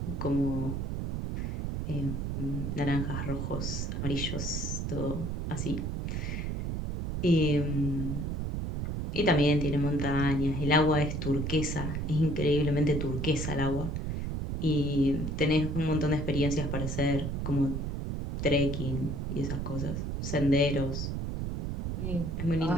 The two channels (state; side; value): noise; right; rumble, 2 dB below the sound